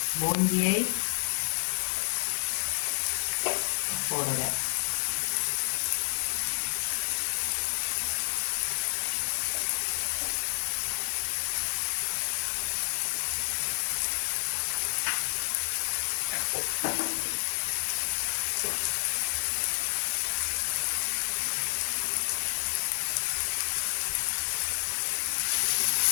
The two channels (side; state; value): right; silent; 58 dB below the other